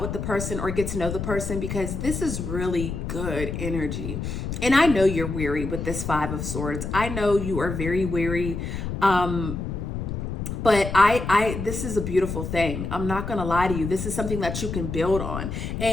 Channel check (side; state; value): left; noise; rumble, 4 dB below the sound